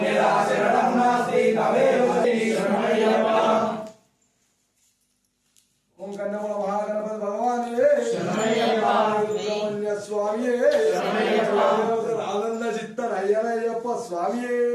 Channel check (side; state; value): both; identical; correlation 1.00